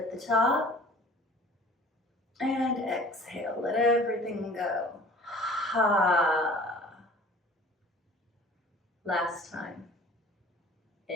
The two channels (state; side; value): normal; both; correlation 0.47